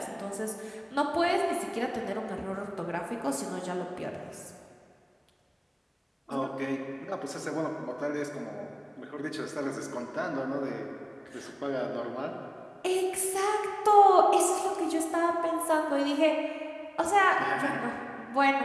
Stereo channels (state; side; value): identical; both; correlation 1.00